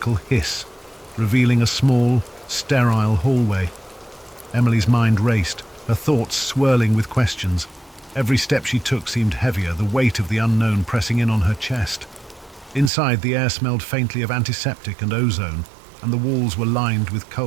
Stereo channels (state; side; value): drops out; left; at 12.9 s